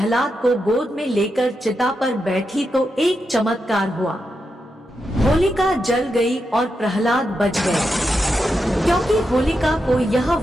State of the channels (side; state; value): both; normal; correlation 0.86